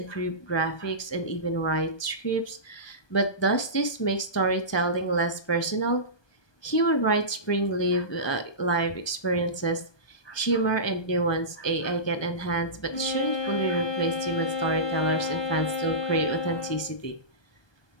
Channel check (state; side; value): late; right; 1.2 ms